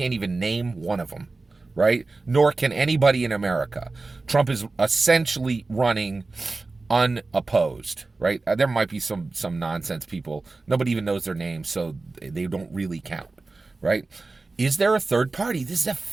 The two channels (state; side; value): quieter; left; 3.5 dB